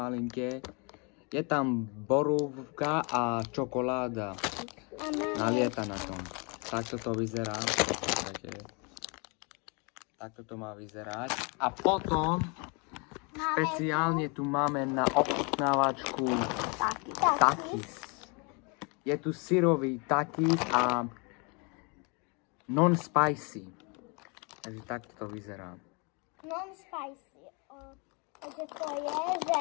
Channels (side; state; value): right; quieter; 32.3 dB